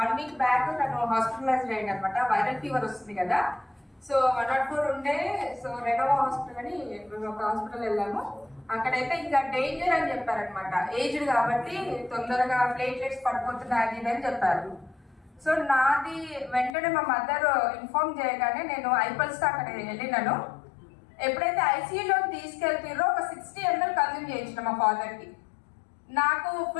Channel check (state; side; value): drops out; right; at 16.8 s